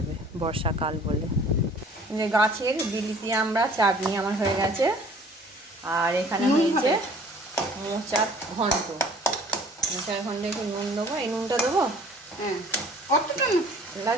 বর্ষাকাল বলে। যে গাছের বিলিতি আমরা চাটনি আমার হয়ে গেছে, আর এখানে হয়েছে মোচার ঘন্ট। মোচার ঘন্টে একটু নুন দেবো, এই নুনটা দেবো। হ্যাঁ, কতটা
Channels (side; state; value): both; normal; correlation 0.52